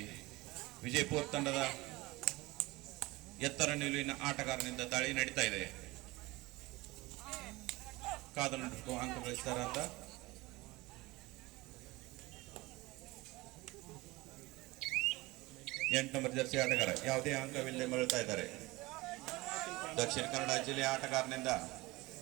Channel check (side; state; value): left; quieter; 21.2 dB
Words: ವಿಜಯಪುರ ತಂಡದ ಎತ್ತರ ನಿಲುವಿನ ಆಟಗಾರನಿಂದ ದಾಳಿ ನಡೀತಾ ಇದೆ. ಕಾದ ನಡುಕು ಅಂಕ ಗಳಿಸ್ತಾರ ಅಂತ ಎಂಟು ನಂಬರ್ ಜರ್ಸಿ ಆಟಗಾರ ಯಾವುದೇ ಅಂಕವಿಲ್ಲದೆ ಮರಳ್ತಾ ಇದ್ದಾರೆ. ದಕ್ಷಿಣ ಕನ್ನಡ ಜಿಲ್ಲೆಯ ಆಟಗಾರನಿಂದ